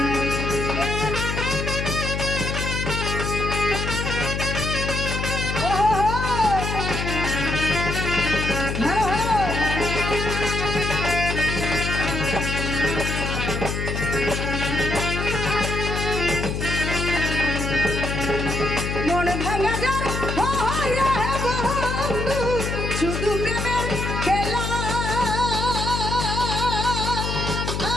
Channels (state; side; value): noise; left; hum, 2 dB below the sound